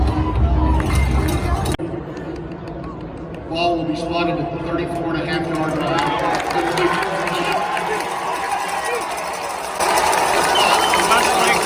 Ball will be spotted at the 34.5-yard line. Westlake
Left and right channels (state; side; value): identical; both; correlation 1.00